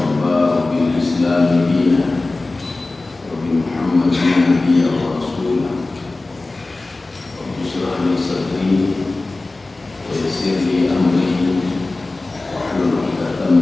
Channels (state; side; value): quieter; right; 3.2 dB